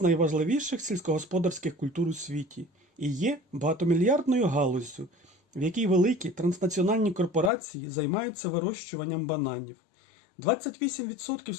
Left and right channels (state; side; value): drops out; right; at 7.5 s